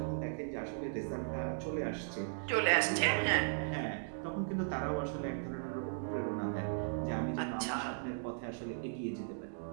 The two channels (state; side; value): silent; left; digital silence